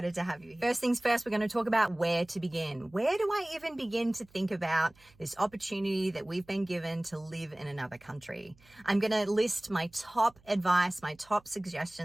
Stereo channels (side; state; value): right; noise; hum, 29 dB below the sound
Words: to have you here. First things first, we're going to talk about where to begin. Where do I even begin to think about this opportunity that we've been given to live in another country? I'm going to list my top advice, my top